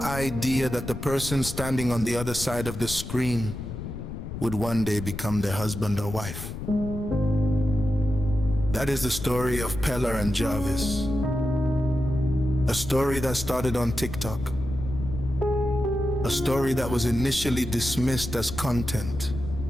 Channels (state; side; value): noise; left; rumble, 8 dB below the sound